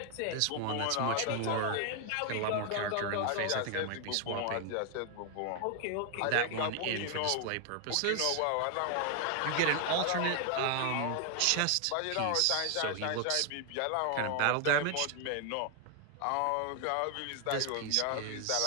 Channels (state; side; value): different; both; correlation 0.00